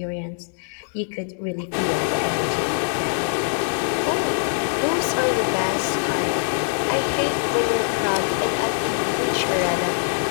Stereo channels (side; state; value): right; silent; digital silence